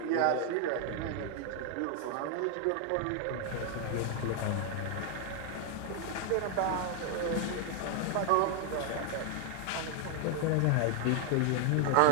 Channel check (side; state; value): both; different; correlation 0.00